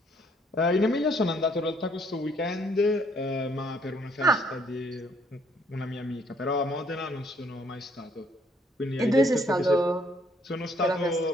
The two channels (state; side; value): normal; both; correlation 0.66